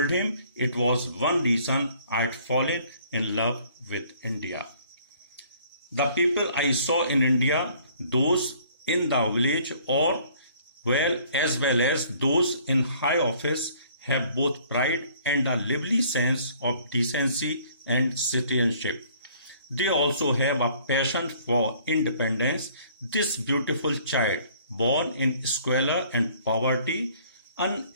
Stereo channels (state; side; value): inverted; both; correlation -0.58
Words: him it was one reason I had fallen in love with India. The people I saw in India, those in the village as well as those in high office, have both pride and a lively sense of decency and citizenship. They also have a passion for independence. This beautiful child, born in squalor and poverty,